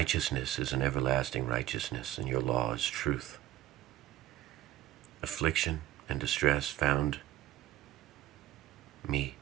is an everlasting righteousness, and your law is truth. Affliction and distress found me,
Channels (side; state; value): left; quieter; 14.1 dB